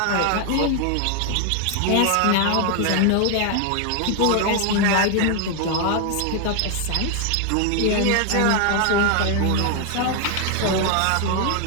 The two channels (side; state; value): both; different; correlation 0.00